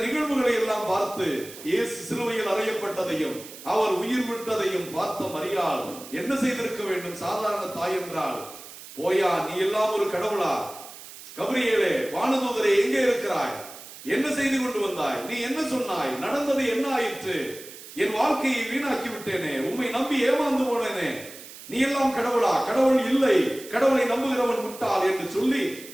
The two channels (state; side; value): noise; right; hiss, 16 dB below the sound